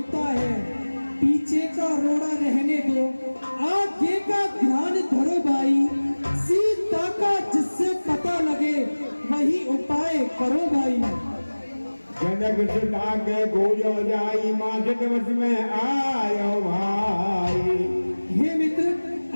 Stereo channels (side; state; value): both; inverted; correlation -1.00